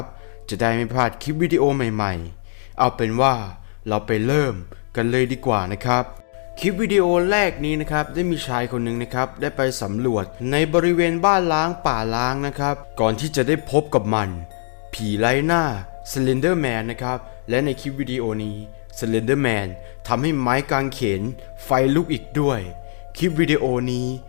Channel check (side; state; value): right; silent; digital silence